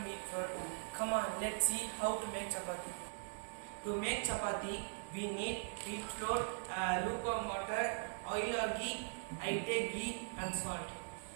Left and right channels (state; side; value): silent; left; digital silence